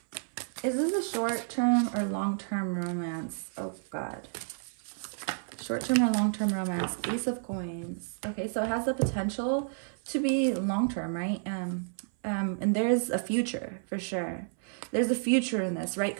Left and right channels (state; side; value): silent; left; 57 dB below the other